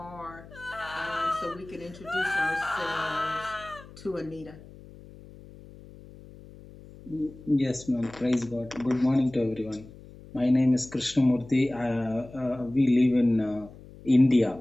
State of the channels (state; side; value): noise; left; hum, 19 dB below the sound